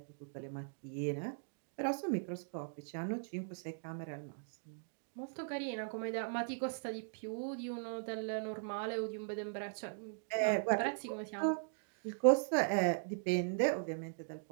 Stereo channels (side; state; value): left; silent; digital silence